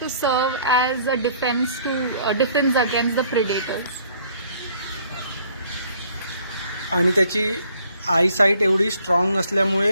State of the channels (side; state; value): both; inverted; correlation -0.61